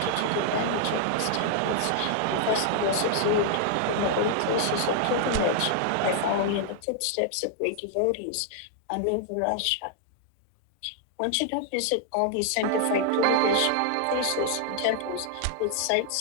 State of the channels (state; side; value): different; both; correlation -0.01